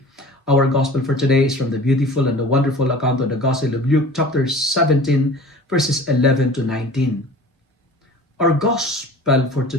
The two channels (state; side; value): normal; both; correlation 0.42